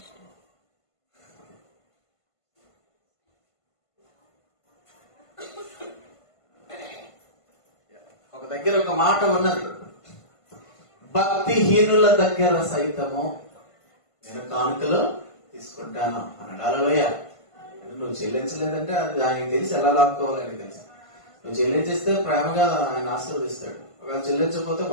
ఒక దగ్గర ఒక మాట ఉన్నది, భక్తిహీనుల దగ్గర సైతము నేను కానుకలు తీసుకుంటాను అన్నాడు. హల్లెలూయా. నువ్వు చెల్లించలేదంటే అది ఆయనకి తెలిసి ఎలా లాక్కోవాలి ఆయనకి తెలుసు. నువ్వు చెల్లించేస్తే ప్రేమగా ఆయన ఆశీర్వదిస్తాడు. ఒకవేళ చెల్లించకపోతే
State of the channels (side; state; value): right; late; 1.5 ms